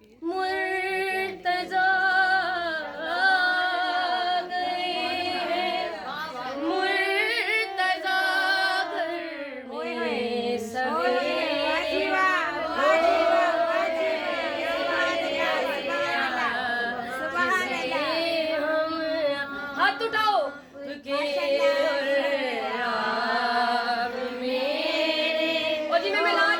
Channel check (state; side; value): identical; both; correlation 1.00